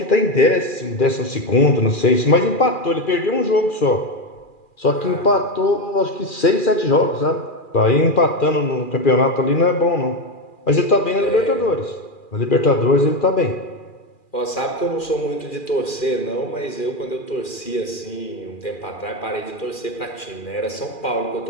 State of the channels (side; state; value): right; late; 2.4 ms